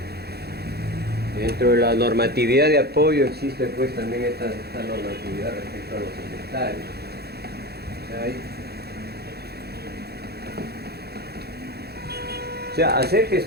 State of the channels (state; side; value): late; left; 0.47 ms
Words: dentro de la normatividad de apoyo existe pues también esta normatividad respecto a los inventarios. O sea, hacer